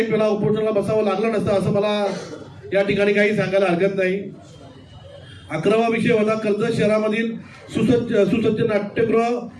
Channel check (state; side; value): identical; both; correlation 1.00